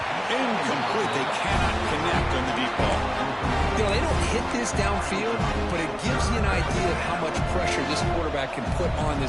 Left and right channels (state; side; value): identical; both; correlation 1.00